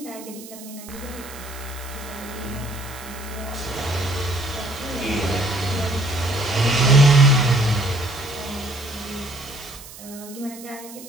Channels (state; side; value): noise; right; hiss, 16 dB below the sound